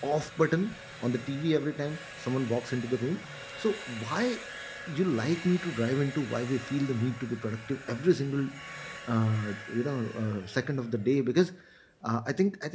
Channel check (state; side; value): identical; both; correlation 1.00